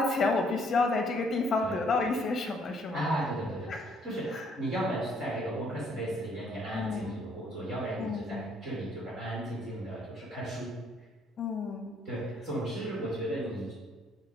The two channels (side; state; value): both; normal; correlation 0.65